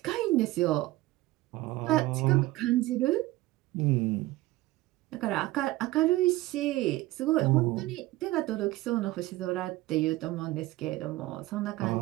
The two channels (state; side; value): quieter; left; 18.2 dB